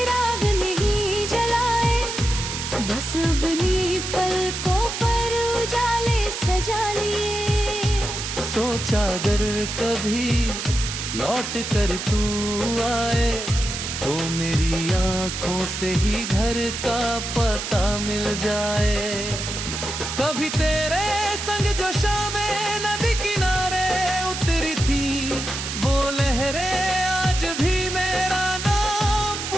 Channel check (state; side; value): noise; right; hiss, 5 dB below the sound